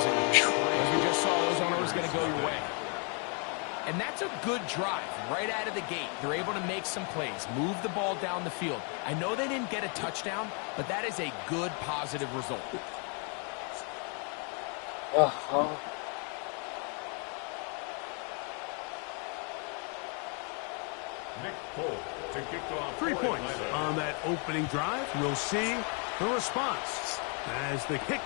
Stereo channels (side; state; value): right; quieter; 37.7 dB